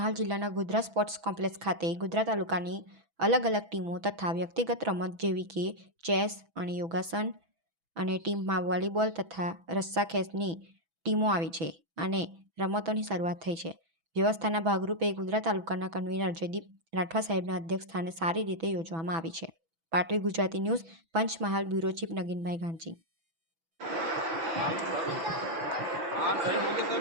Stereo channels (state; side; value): late; left; 6.1 ms